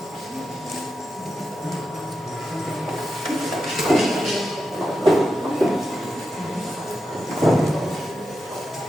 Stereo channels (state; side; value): normal; both; correlation 0.89